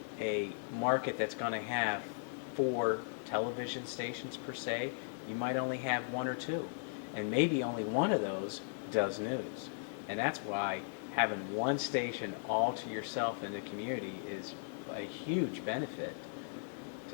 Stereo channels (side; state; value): right; silent; 53 dB below the other